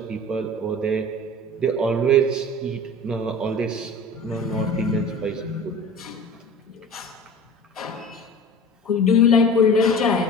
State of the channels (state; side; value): normal; both; correlation 0.39